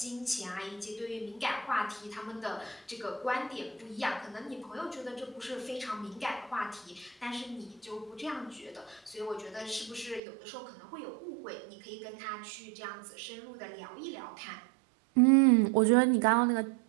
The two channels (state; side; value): drops out; left; at 10.2 s